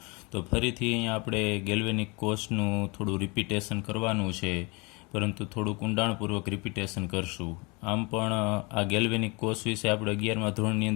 તો ફરીથી અહીંયા આપણે ગેલ્વેનિક કોષનું થોડું રિપીટેશન કરવાનું છે, પરંતુ થોડુંક ઊંડાણપૂર્વક રિપીટેશન કરશું. આમ પણ આ ગેલ્વેનિક કોષ વિશે આપણે 11મા ધોરણની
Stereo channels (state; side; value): quieter; right; 28.1 dB